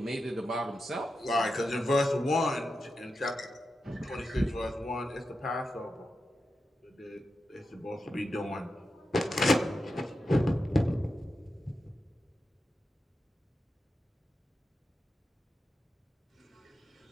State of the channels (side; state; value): both; normal; correlation 0.89